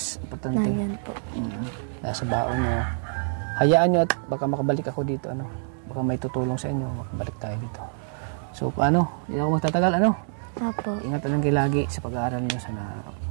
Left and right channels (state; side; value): silent; left; 61 dB below the other